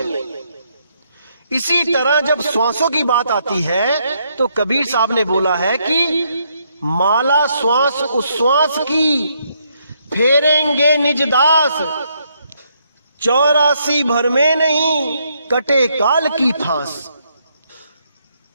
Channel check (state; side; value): inverted; both; correlation -0.74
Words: इसी तरह जब श्वासों की बात आती है तो कबीर साहब ने बोला है कि माला श्वास उश्वास की, फेरेंगे निज दास, 84 भर में नहीं कटे काल की फांस।